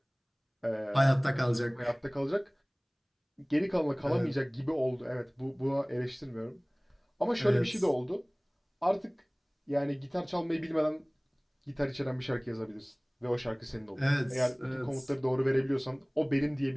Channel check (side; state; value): both; identical; correlation 1.00